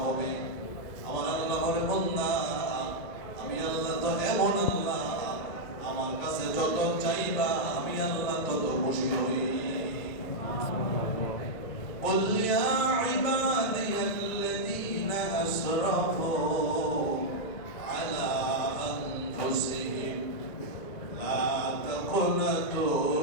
হবে। আমার আল্লাহ বলে, বান্দা আমি আল্লাহ তো এমন আল্লাহ, আমার কাছে যত চাইবা আমি আল্লাহ তত খুশি হই। قل يا عبادي الذين أسرفوا على أنفسهم لا تقنطوا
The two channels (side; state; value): right; late; 2.1 ms